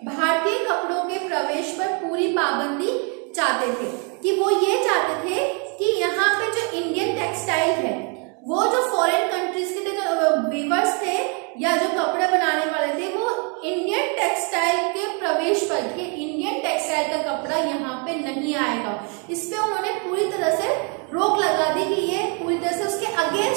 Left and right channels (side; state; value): left; quieter; 36.8 dB